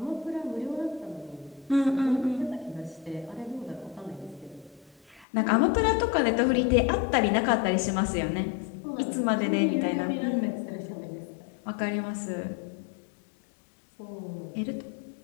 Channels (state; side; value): drops out; right; at 5.2 s